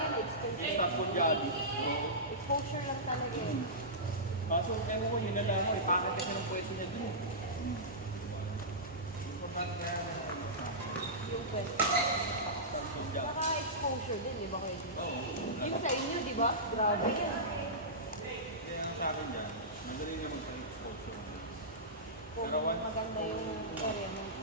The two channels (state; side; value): normal; both; correlation -0.17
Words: Exposure. Stop po jolley. Exposure lang talaga yun. Kaso, ewan ko, yun na lang ako. Ipakit kasi ng pwesto niya dun. Yung pwede. Stop po jolley. Saka exposure din, di ba kayo? Yung sa inyo, di ba? Grabe yan. Kaya ang sa akin dyan, madali naman sa exposure. Kung Pero once- maganda yung area mo.